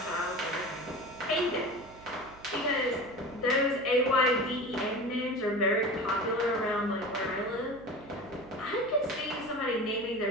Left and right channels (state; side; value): noise; right; hum, 21 dB below the sound